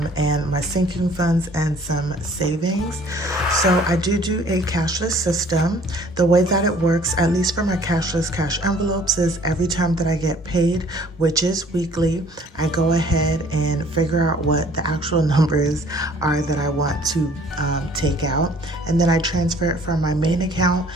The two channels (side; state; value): both; normal; correlation 0.55